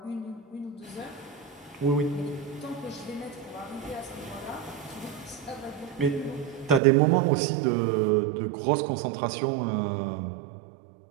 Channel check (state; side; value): drops out; left; at 6.8 s